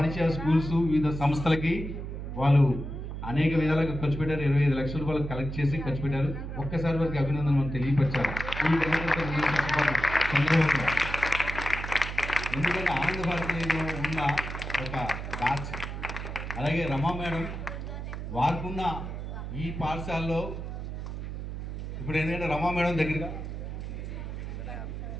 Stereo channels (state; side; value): noise; right; hum, 6 dB below the sound